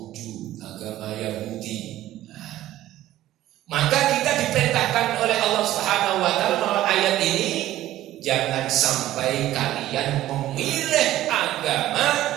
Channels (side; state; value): left; quieter; 14.3 dB